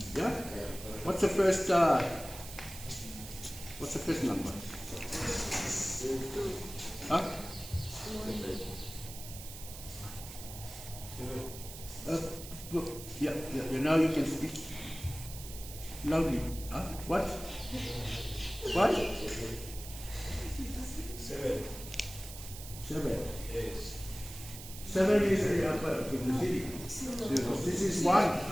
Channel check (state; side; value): noise; right; hiss, 12 dB below the sound